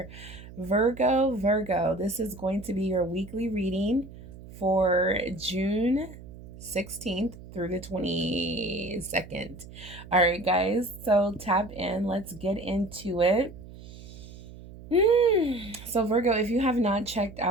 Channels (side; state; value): right; noise; hum, 16 dB below the sound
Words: Virgo, this is going to be your weekly reading for June 16th through the 22nd. All right, guys, so tap in. Let's get into it. So Virgo, if you have not checked